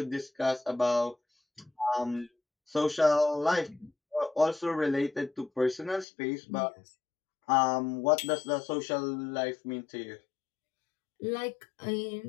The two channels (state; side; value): drops out; right; at 6.1 s